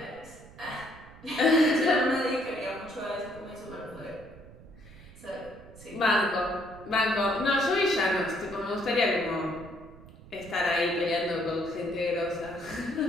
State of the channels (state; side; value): noise; right; rumble, 19 dB below the sound